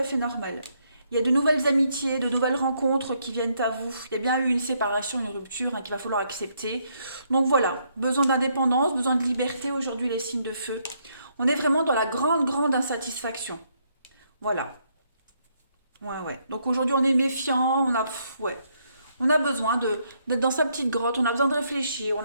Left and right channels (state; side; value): inverted; both; correlation -0.73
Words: fait normal. Il y a de nouvelles amitiés, de nouvelles rencontres qui viennent à vous. Il y a bien eu une séparation, une rupture, hein, qu'il va falloir accepter. Donc, voilà, besoin d'indépendance, besoin de liberté aujourd'hui, les signes de feu. On est vraiment dans la grande, grande insatisfaction. Voilà. Ouais, ouais. Donc aujourd'hui, on est méfiant, ouais. On a besoin d'être dans sa petite grotte, on a besoin de réfléchir, on